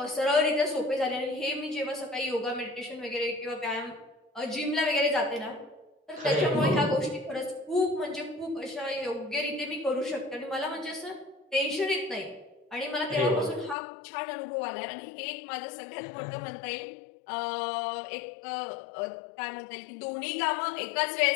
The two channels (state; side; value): drops out; right; at 13.8 s